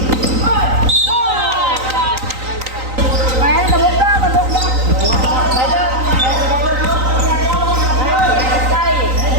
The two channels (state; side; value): late; left; 3.9 ms